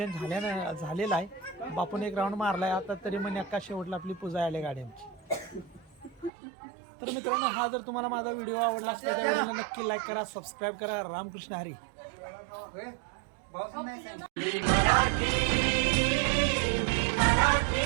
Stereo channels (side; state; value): left; drops out; at 6.3 s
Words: झालेलं आहे. बापून एक राऊंड मारलाय आता तरी मन्याका शेवटला आपली पूजा आली गाडी आमची. तर मित्रांनो हा जर तुम्हाला माझा व्हिडिओ आवडला असला त्या व्हिडिओला नक्की लाईक करा, सबस्क्राईब करा. रामकृष्ण हरी.